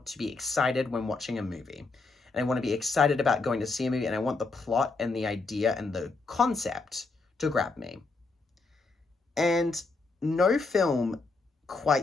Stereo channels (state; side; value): quieter; right; 3.8 dB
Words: to be excited when watching a movie. And I want to be excited about going to see a movie, and I want the plot and the idea and the concept to grab me. And no film